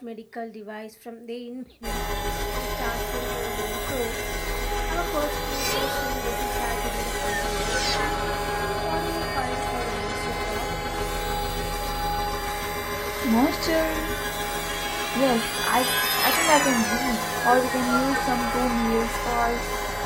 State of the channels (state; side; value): identical; both; correlation 1.00